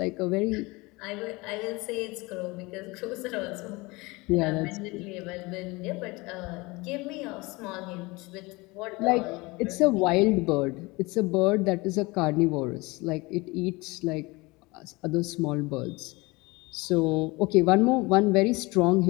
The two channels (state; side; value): quieter; right; 23.8 dB